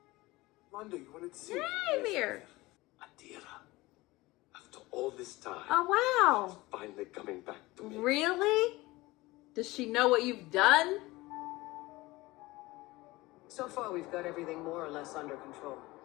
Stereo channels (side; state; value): right; quieter; 20.4 dB